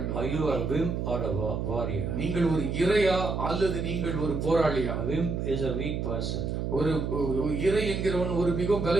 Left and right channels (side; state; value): right; noise; hum, 2 dB below the sound